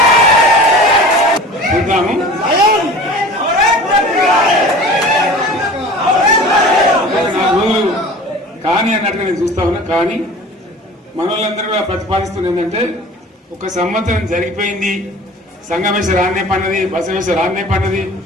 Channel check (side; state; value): both; normal; correlation 0.41